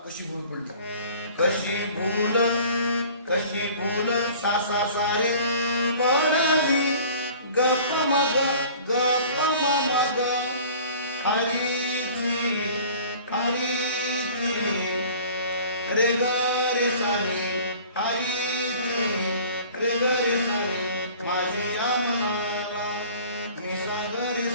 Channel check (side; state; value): both; inverted; correlation -0.46